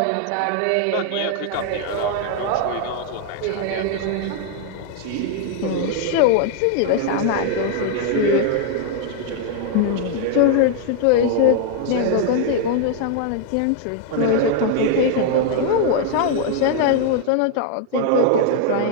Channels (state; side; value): different; both; correlation 0.00